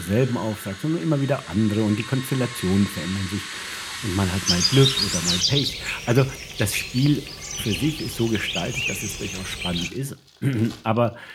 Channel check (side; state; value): both; identical; correlation 1.00